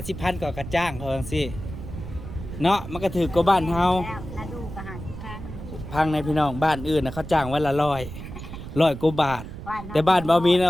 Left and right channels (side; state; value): right; noise; rumble, 10 dB below the sound